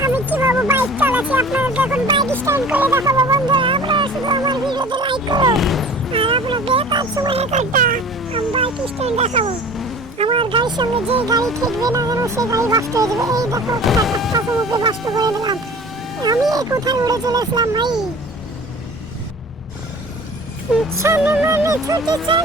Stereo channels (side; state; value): both; normal; correlation 0.43